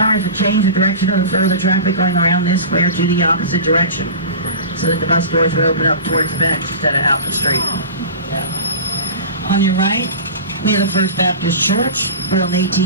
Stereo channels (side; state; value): both; inverted; correlation -0.33